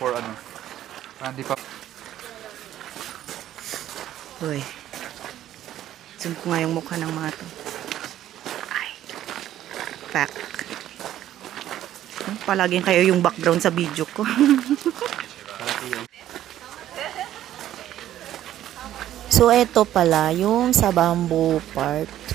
ano. Hindi pa. Uy. Zoom ko nga yung mukha ng mga to. Pack. Palaging kayo yung background sa video ko. So, eto pala, yung sa bamboo part.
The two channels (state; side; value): quieter; left; 12.3 dB